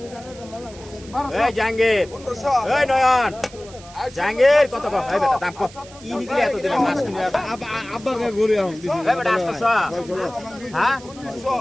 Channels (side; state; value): right; noise; hiss, 20 dB below the sound